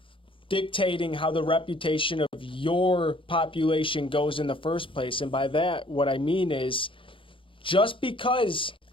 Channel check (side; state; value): right; late; 0.25 ms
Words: dictating how the reputation of your population goes in the first place. And by that, what I mean is just because